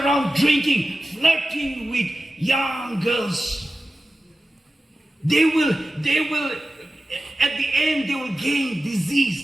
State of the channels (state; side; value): normal; both; correlation 0.94